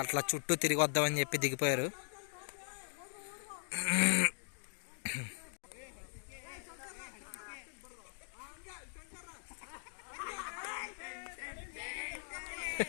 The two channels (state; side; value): silent; right; digital silence